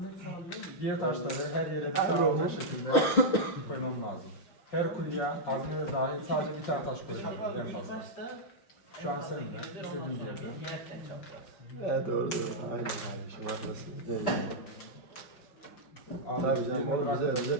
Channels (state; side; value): late; right; 5.5 ms